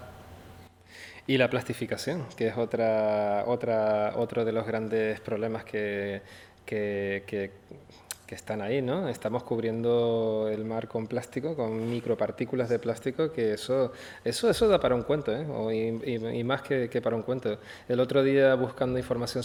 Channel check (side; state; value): both; identical; correlation 1.00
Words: Y la plastificación, que es otro de los grandes problemas que están ahí, ¿no? Estamos cubriendo el mar con plástico, con micropartículas de plástico, que eso da para un cuento, ¿eh? Y más que para un cuento. El otro día, buscando información